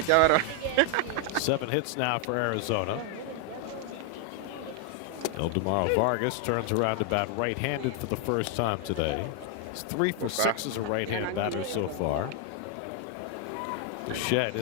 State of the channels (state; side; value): different; both; correlation 0.00